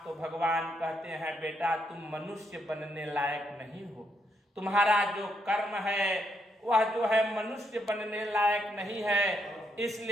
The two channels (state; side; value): normal; both; correlation 0.77